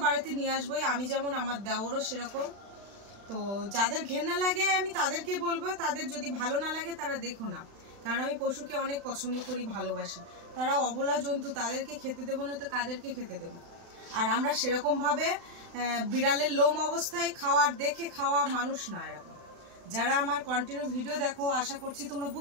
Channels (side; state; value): left; late; 35 ms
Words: বাড়িতে নিয়ে আসবোই। আমি যেমন, আমার দেওরও সেরকম। তো যাদের ঘেন্না লাগে আমি তাদেরকে বলবো, তাদের যদি ভালো না লাগে তারা দেখো না, কারণ আমি পশুকে অনেক পছন্দ করি, ভালোবাসি। তারা অবলা জন্তু, তাদেরকে খেতে দেবো না তো কাদেরকে খেতে দেবো? আর আমরা সেরকমভাবে বিড়ালের লোম অবস্থায় দেখে খাওয়া মানুষ না। এরকম যারা আমার কন্টিনিউ ভিডিও দেখো, আশা করছি তোমরা